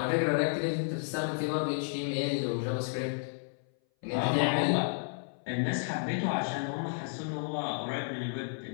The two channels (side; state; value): right; silent; 57 dB below the other